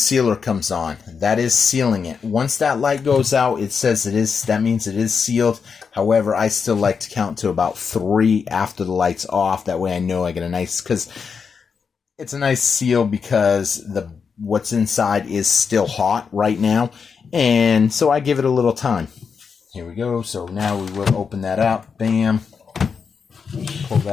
comes on. That is sealing it. Once that light goes out, it says it is, that means it is sealed. However, I still like to count to about 3 after the light's off. That way I know I get a nice, because it's a nice seal because what's inside is still hot right now. And so I give it a little time. Here we go. So now we will open that up. Bam. Pull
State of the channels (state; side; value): quieter; right; 5.9 dB